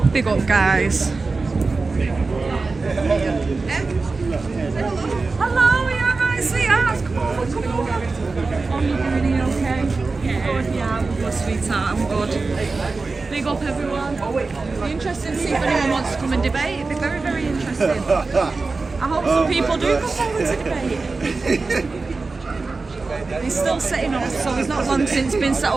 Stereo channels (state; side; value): quieter; left; 3.9 dB